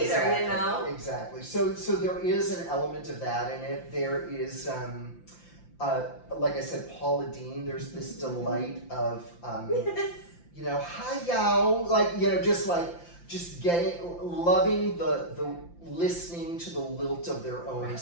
Exactly. So there is an element of that in it. There is, like I said, Paula Deen, there's this delight of, hi y'all, just loving the listening to the lilt of their own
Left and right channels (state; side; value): late; right; 5.8 ms